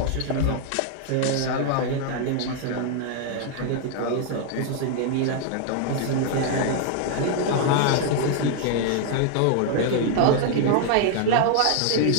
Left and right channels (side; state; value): both; different; correlation 0.00